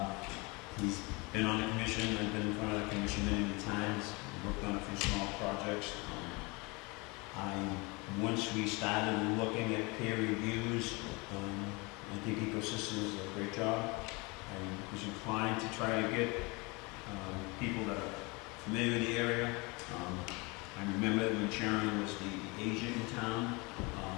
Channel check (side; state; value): right; quieter; 27.1 dB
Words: He's been on the commission. I've been in front of the commission many times. Worked on a few small projects. Once we started looking at peer reviews, I think Ecosystems did a great job. I was inclined to try to get people that are familiar with the area. I remember when Sharon was the agent in town,